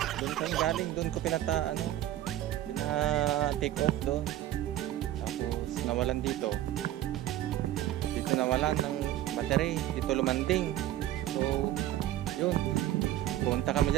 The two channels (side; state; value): left; quieter; 13.5 dB